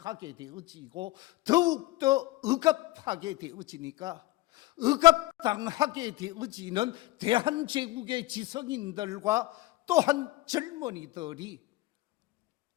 되어지고 더욱더 억압하게 되어지니까 억압당하게 되어지는 대한제국의 지성인들과 또한 젊은이들이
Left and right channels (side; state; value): right; quieter; 18.2 dB